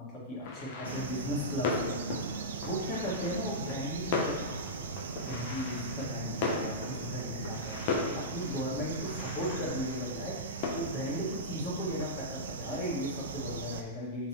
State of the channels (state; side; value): normal; both; correlation -0.14